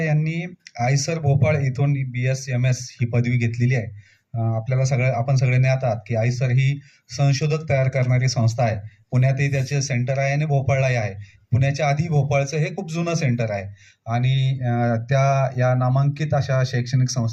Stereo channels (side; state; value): both; identical; correlation 1.00